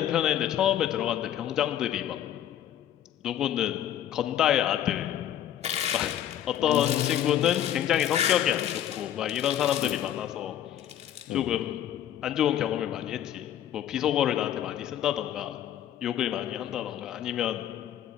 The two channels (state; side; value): quieter; right; 11.1 dB